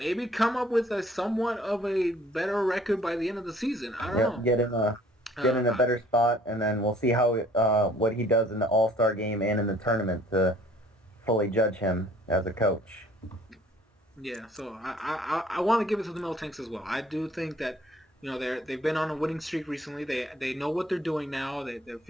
come up with a somewhat of a better record by the end of the season. I don't Yep, know. get in a Uh, better spot, and then we'll see how what he does in the All Star game and in the tournament to fully judge him as a coach. yeah, so I want to give it to the Miltanks as well. I do think that they've been on a winning streak recently. They know what they're doing now. They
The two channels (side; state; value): both; normal; correlation 0.56